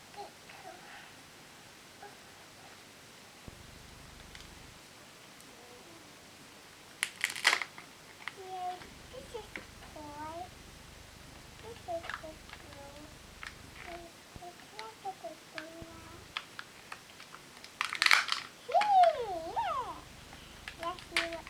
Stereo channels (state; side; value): identical; both; correlation 1.00